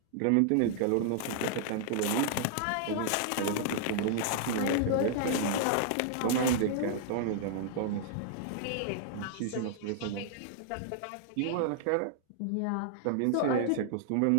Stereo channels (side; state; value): both; different; correlation -0.01